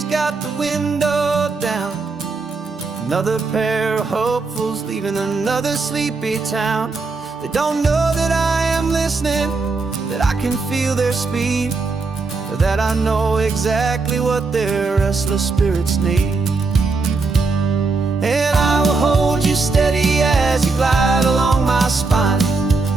got the window down. Another pair of hopefuls leaving another sleepy town. They don't know that I am listening, that I can feel their speed, or that I know exactly what their restless spirits need. And I will hold you steady as you glide along my spine.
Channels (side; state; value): left; quieter; 4.0 dB